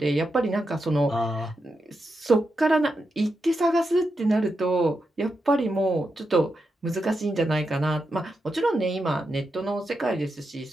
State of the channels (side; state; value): both; normal; correlation 0.86